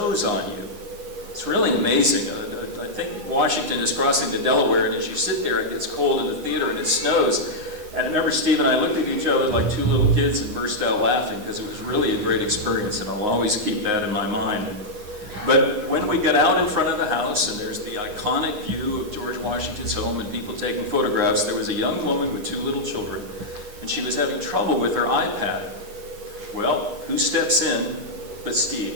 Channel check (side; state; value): left; late; 9.6 ms